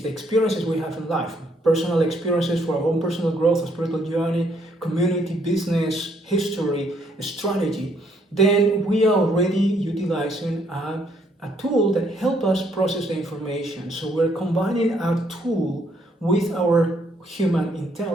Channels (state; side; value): normal; both; correlation 0.69